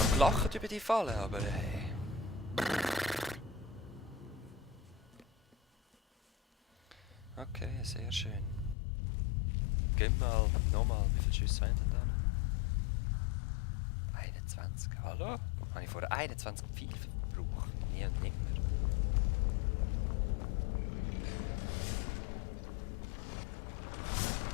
noch gelacht über die Falle, aber hey. Okay, sehr schön. Gehen wir mal, nochmal, wie viele Schüsse haben denn da noch? 21, hallo? Habe ich vorher 21 Pfeile verbraucht? Nie und nimmer.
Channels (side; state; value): right; drops out; at 8.8 s